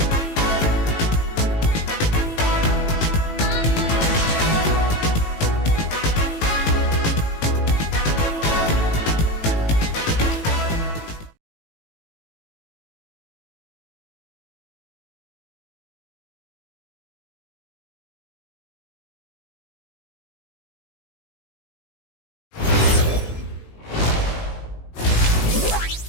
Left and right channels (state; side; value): late; right; 18 ms